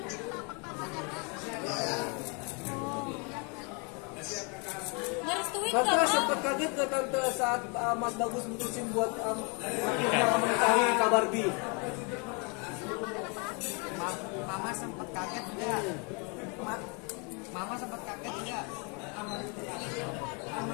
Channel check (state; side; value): quieter; right; 33.5 dB